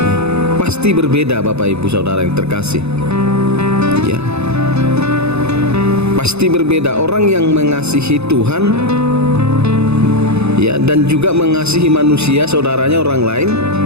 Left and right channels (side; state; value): left; late; 0.80 ms